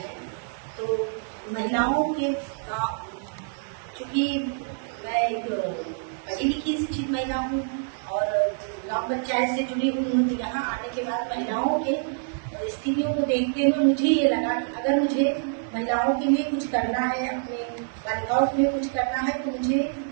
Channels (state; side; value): silent; left; 61 dB below the other